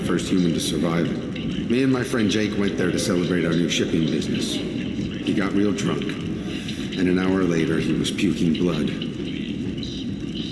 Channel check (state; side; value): identical; both; correlation 1.00